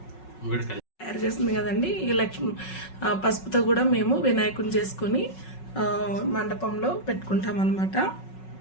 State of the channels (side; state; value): right; late; 5.4 ms